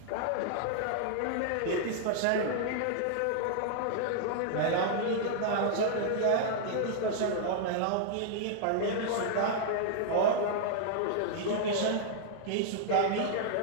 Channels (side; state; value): both; different; correlation -0.01